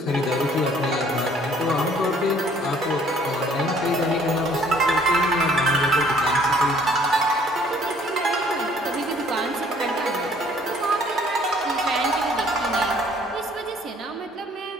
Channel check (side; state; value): both; normal; correlation 0.59